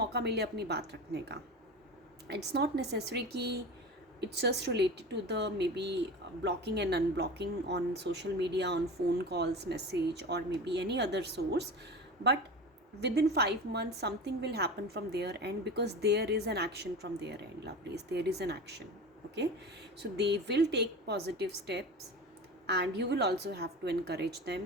मिले अपनी बात रखने का। इट्स नॉट नेसेसरी कि it's just related to the maybe blocking and unblocking on social media, on phone calls, message, or maybe any other source. But within 5 months something will happen from their end, because there is an action from their end, lovelies. There is an action, okay. So they will take positive steps and you will also have to encourage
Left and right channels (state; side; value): normal; both; correlation 0.31